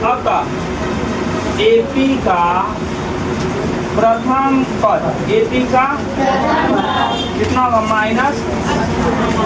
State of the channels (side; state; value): both; identical; correlation 1.00